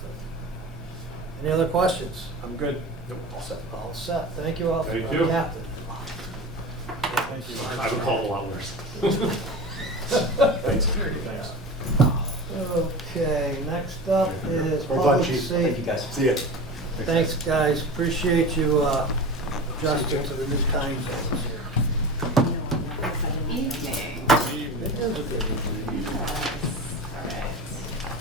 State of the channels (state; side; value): normal; both; correlation 0.31